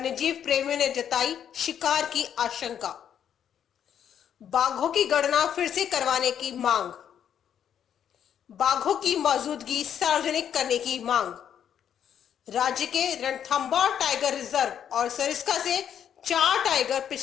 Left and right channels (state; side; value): quieter; right; 9.1 dB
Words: प्रेमियों ने जताई शिकार की आशंका। बाघों की गणना फिर से करवाने की मांग। बाघों की मौजूदगी सार्वजनिक करने की मांग। राज्य के रणथंभौर टाइगर रिजर्व और सरिस्का से 4 टाइगर